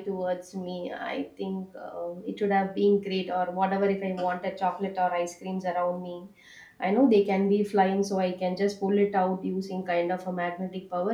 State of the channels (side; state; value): both; identical; correlation 1.00